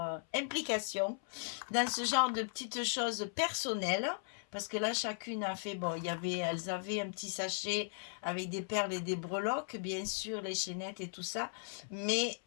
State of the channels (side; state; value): right; silent; 53 dB below the other